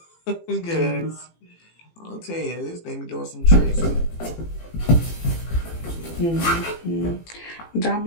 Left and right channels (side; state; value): right; late; 18 ms